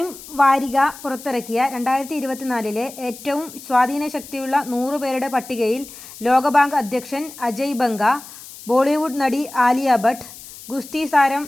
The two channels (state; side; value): noise; left; hiss, 16 dB below the sound